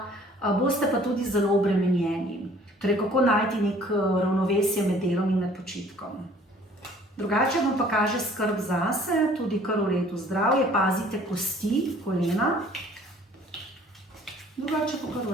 boste pa tudi zelo obremenjeni. Torej, kako najti nek ravnovesje med delom in med počitkom. Drugače vam pa kaže skrb zase, tudi kar v redu zdravje, pazite kosti, kolena. Drugače pa kar v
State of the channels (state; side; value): normal; both; correlation 0.54